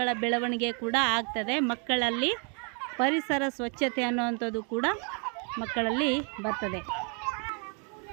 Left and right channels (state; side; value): quieter; left; 37.8 dB